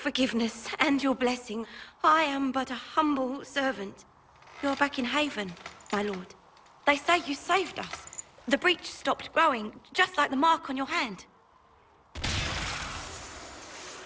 and your blessing. I am but a humble servant. You're back in Haven, my lord. They say you saved us. The breach stopped growing, just like the mark on your hand.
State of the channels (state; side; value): identical; both; correlation 1.00